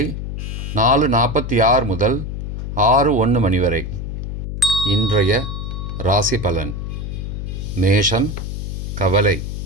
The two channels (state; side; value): noise; left; hum, 5 dB below the sound